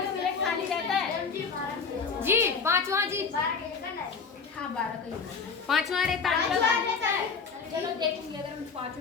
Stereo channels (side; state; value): right; quieter; 5.4 dB